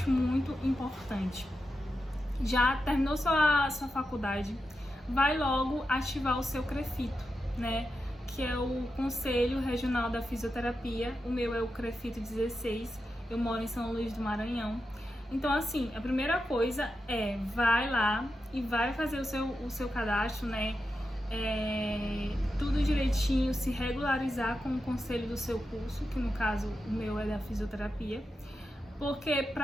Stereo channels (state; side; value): normal; both; correlation 0.89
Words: muito importante. Já terminou sua faculdade, vai logo ativar o seu CREFITO, né? Que é o Conselho Regional da Fisioterapia. O meu é o CREFITO 16, eu moro em São Luís do Maranhão. Então, assim, a primeira coisa é, vai lá e vai fazer o seu cadastro, né? Tudo direitinho, se regularizar com o conselho do seu curso, que no caso o meu é da fisioterapia. Porque